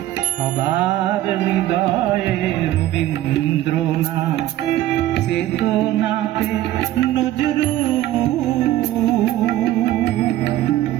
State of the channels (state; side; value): quieter; left; 14.1 dB